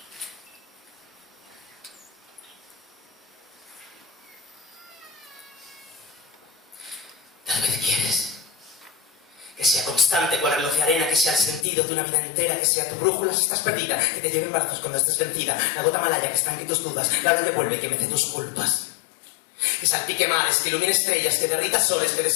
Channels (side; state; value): right; drops out; at 11.7 s